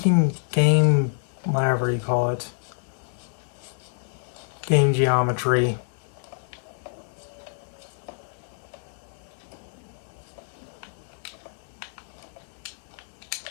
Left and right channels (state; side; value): silent; right; 60 dB below the other